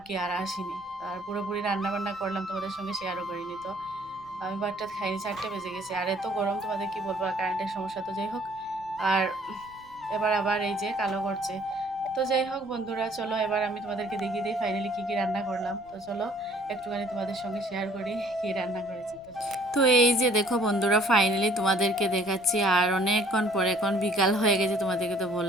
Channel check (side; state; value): left; noise; rumble, 27 dB below the sound